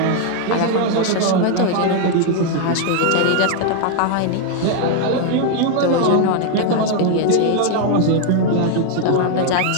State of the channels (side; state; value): both; different; correlation 0.00